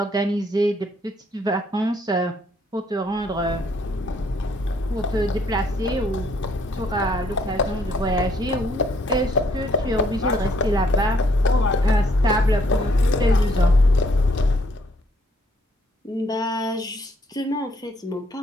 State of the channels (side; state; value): both; normal; correlation 0.67